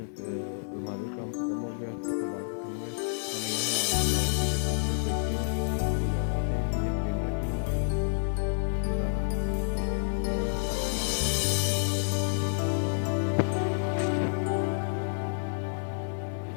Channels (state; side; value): silent; right; 58 dB below the other